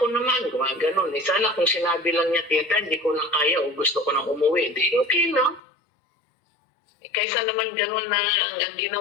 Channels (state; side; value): drops out; right; at 5.6 s